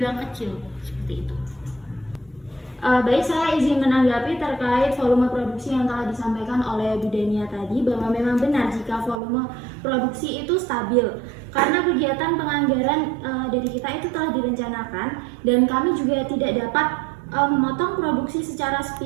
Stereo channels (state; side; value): drops out; left; at 9.2 s